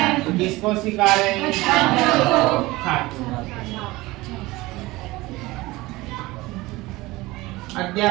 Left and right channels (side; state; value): left; quieter; 20.2 dB